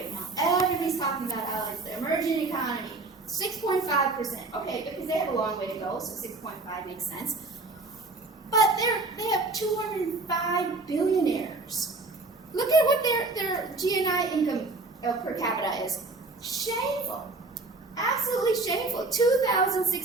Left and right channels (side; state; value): left; quieter; 3.4 dB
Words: now. Everybody's talking about how it's the emerging economy. 6.5%. Okay, because they have a long way to go, so 6.5 makes sense. But they have 205 billionaires. Look at what their GNI income per capita is. Shameful. Absolutely shameful.